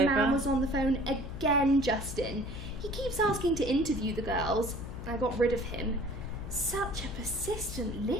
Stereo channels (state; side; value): noise; left; hum, 10 dB below the sound